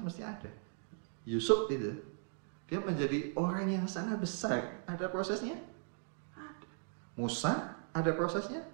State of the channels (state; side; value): silent; left; 52 dB below the other